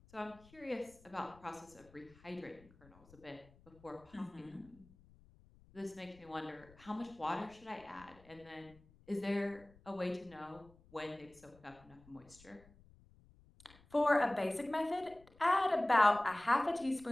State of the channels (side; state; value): left; noise; rumble, 26 dB below the sound